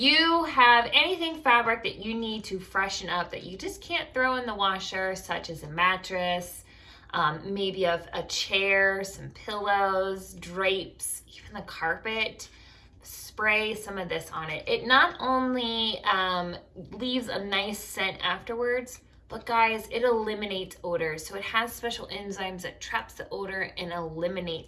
have anything fabric that you need to freshen up that you just can't throw in the washer, such as a mattress, maybe a chair, some pillows, drapes, even the carpet, spray some of this on it. It not only leaves a nice scent afterwards, but guys, it eliminates odors. So it has special enzymes that traps the odor and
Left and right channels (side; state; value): both; identical; correlation 1.00